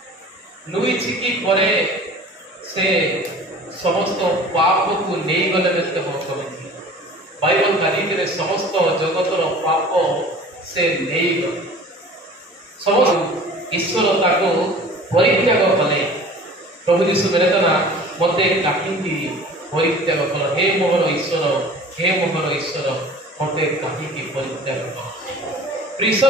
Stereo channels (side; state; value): both; normal; correlation 0.44